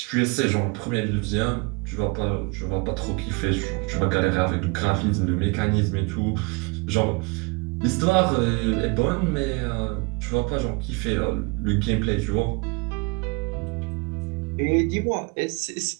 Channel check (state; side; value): quieter; left; 28.8 dB